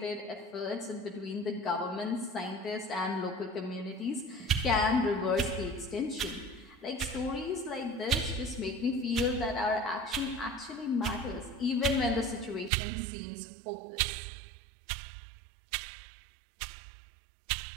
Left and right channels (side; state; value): left; drops out; at 12.7 s